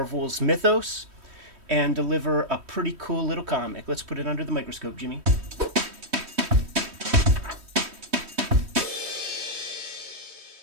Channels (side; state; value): left; late; 3.1 ms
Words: mythos and deliver a pretty cool little comic. Let's put it under the microscope, Jimmy.